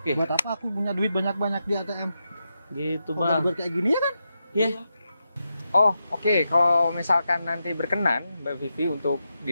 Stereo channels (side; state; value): both; inverted; correlation -0.87